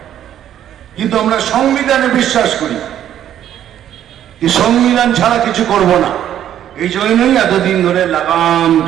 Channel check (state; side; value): quieter; left; 10.8 dB